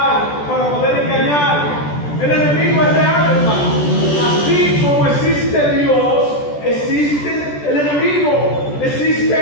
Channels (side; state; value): right; late; 14 ms